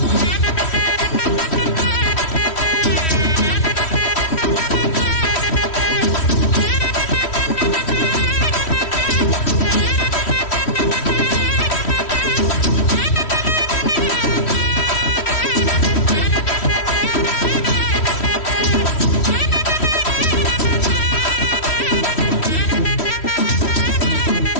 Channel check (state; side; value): late; right; 3.1 ms